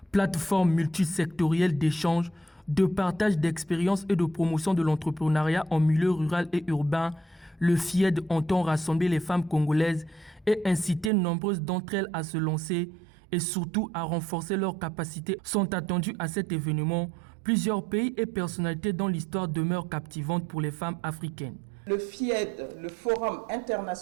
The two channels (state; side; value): drops out; left; at 11.1 s